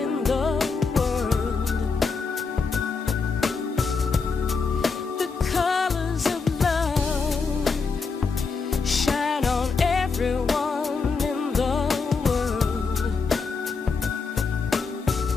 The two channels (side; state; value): right; quieter; 4.8 dB